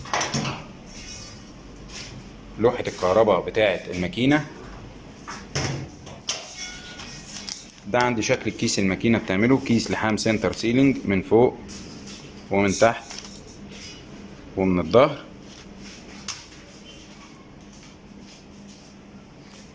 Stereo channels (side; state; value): both; identical; correlation 1.00